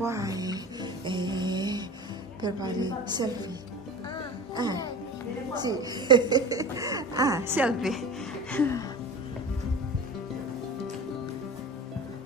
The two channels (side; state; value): both; normal; correlation 0.34